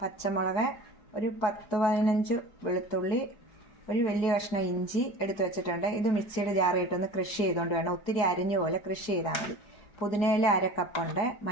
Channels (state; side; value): late; right; 4.7 ms